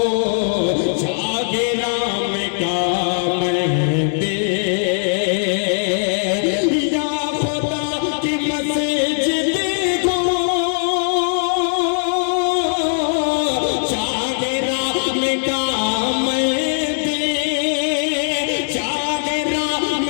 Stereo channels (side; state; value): right; silent; digital silence